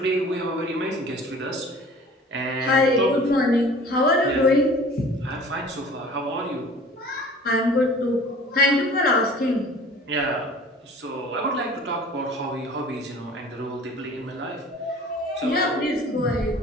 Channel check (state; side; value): normal; both; correlation 0.46